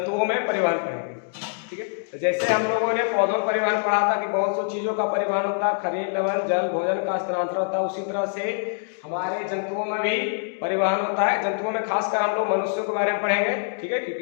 में परिवहन पढ़ेंगे, ठीक है। तो जैसे हम लोगों ने पौधों में परिवहन पढ़ा था कि बहुत सी चीज़ों का परिवहन होता है, खनिज लवण जल भोजन का स्थानांतरण होता है, उसी तरह से हमारे जंतुओं में भी परिवहन होता है। जंतुओं में खासकर हम लोग मनुष्यों के बारे में पढ़ेंगे, ठीक है,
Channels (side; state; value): right; silent; digital silence